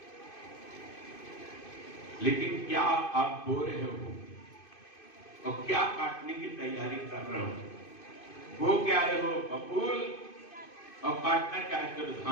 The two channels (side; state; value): right; late; 2.5 ms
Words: लेकिन क्या आप बो रहे हो और क्या काटने की तैयारी कर रहे हो? वो क्या रहे हो बबूल और काटना चाहते हो